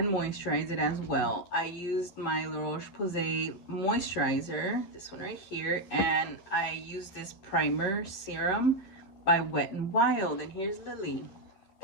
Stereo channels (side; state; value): right; late; 11 ms